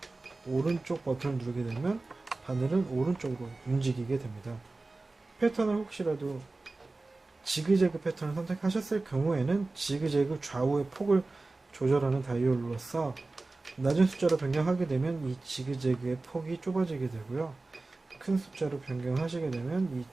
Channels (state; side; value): quieter; left; 3.3 dB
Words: 오른쪽 버튼을 누르게 되면 바늘은 오른쪽으로 움직이게 됩니다. 패턴을 혹시라도 지그재그 패턴을 선택하셨을 경우에는 지그재그 좌우의 폭을 조절하는 다이얼로서 낮은 숫자로 변경하게 되면 이 지그재그의 폭이 좁아지게 되고요. 큰 숫자로 변경하시게 되면 이